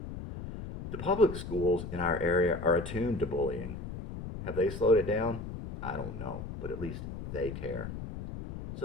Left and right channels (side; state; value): left; noise; rumble, 8 dB below the sound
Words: The public schools in our area are attuned to bullying. Have they slowed it down? I don't know, but at least they care.